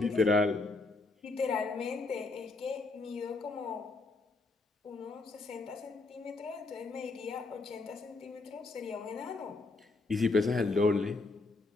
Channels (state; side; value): quieter; right; 3.5 dB